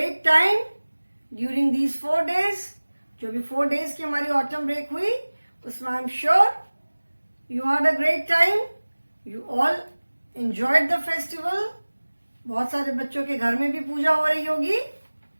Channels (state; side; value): inverted; both; correlation -1.00